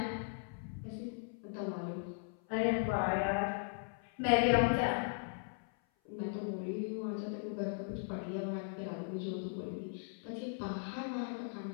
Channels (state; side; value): silent; right; 52 dB below the other